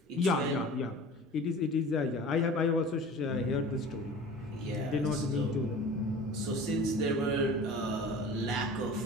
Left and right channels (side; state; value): both; normal; correlation 0.40